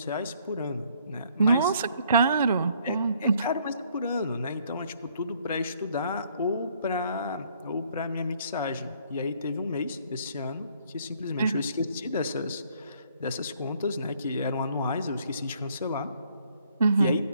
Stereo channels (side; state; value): both; inverted; correlation -0.64